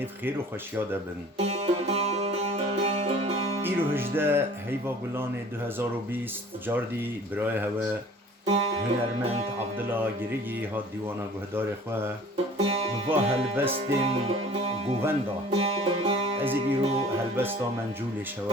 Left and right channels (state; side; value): normal; both; correlation 0.48